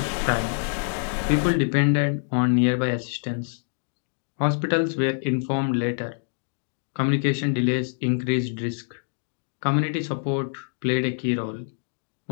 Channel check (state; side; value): silent; right; digital silence